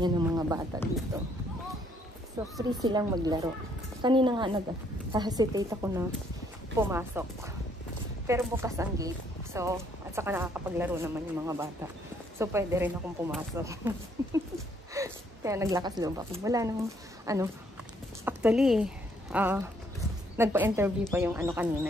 ng mga bata dito. So, free silang maglaro. Kanina nga nag-hesitate ako na pumasok. Pero bukas ang gate. So, at saka nakakapaglaro naman yung mga bata. So, pwede rin akong pumasok. Kaya naglakas loob ako. Wala nang, actually, nagpa-interview pa yung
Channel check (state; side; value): normal; both; correlation 0.68